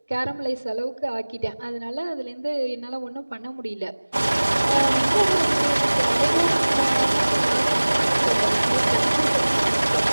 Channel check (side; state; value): both; inverted; correlation -1.00